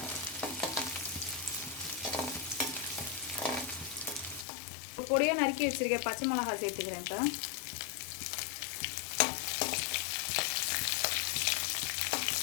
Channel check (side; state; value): right; drops out; at 4.5 s